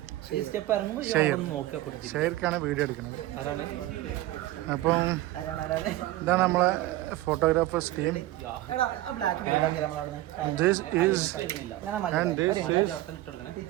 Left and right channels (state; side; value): quieter; left; 16.3 dB